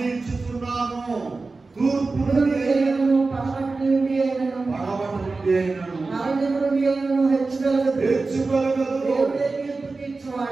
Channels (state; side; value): quieter; left; 3.8 dB